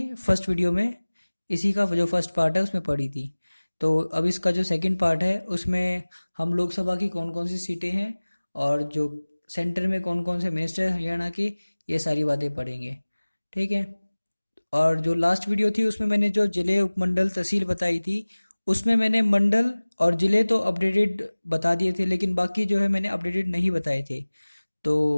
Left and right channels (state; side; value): inverted; both; correlation -1.00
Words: फर्स्ट वीडियो में, इसी का जो फर्स्ट पार्ट है उसमें पढ़ी थी। तो अब इसका जो सेकंड पार्ट है उसमें हम लोकसभा की कौन कौन सी सीटें हैं और जो सेंटर में कौन कौन से मिनिस्टर हैं हरियाणा के, ये सारी बातें पढ़ेंगे। ठीक है। और जो लास्ट वीडियो थी उसमें मैंने जो जिले, उपमंडल, तहसील बताई थी, उसमें मैंने मंडल और जिले तो अपडेटेड बता दिए थे, लेकिन बाकी जो है मैंने अपडेटेड नहीं बताए थे।